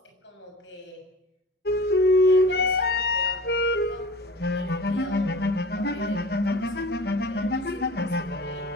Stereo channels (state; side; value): normal; both; correlation 0.39